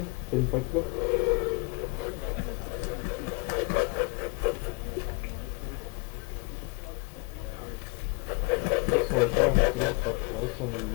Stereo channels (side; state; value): right; quieter; 28.6 dB